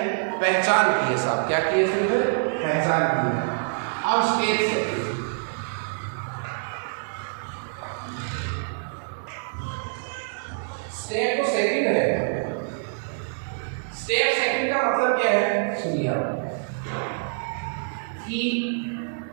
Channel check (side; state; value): left; silent; 61 dB below the other